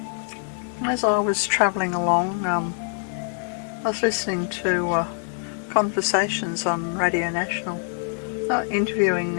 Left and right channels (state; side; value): silent; right; 57 dB below the other